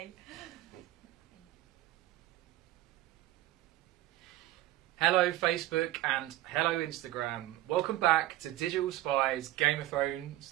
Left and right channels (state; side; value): quieter; left; 15.3 dB